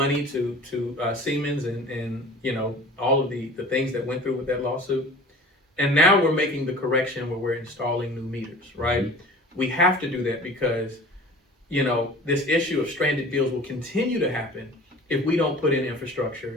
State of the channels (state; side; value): normal; both; correlation 0.43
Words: to Siemens and all of the things that went through with that lawsuit. And now we're making the correction where we're installing new meters, right? Mm-hmm. We have to do that because, this issue of stranded bills will continue to happen if we don't put in